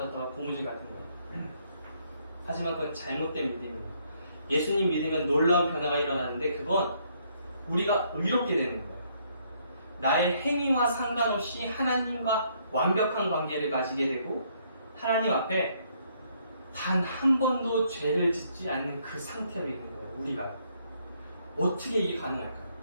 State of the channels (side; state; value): both; inverted; correlation -0.69